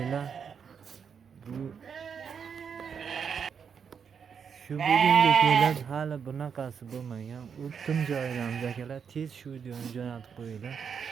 Shu bugunga kelib hali bunaqasi bo'lmagan. O'tdim joyidan akalar tez shu videoni jo'natib qo'yinglar.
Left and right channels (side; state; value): left; quieter; 6.9 dB